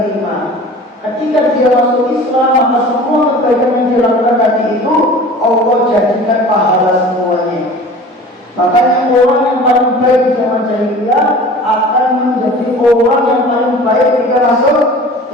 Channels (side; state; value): both; normal; correlation 0.41